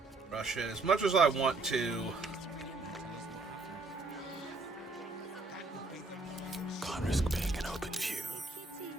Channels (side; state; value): left; quieter; 3.5 dB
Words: rush it as much as I want to. Can't risk being an open view.